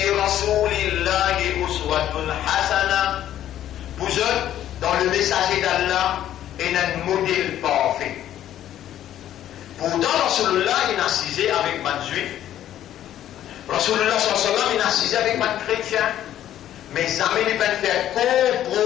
رسول الله أسوة حسنة. Vous êtes dans le messager d'Allah et un modèle parfait. Pourtant, Rasulullah il a cisé avec man juif. Rasulullah sallallahu il a cisé avec man chrétien. Mais jamais il ne peut faire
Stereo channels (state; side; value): quieter; right; 11.8 dB